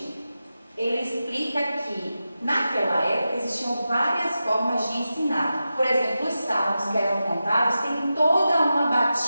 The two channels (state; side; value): inverted; both; correlation -0.92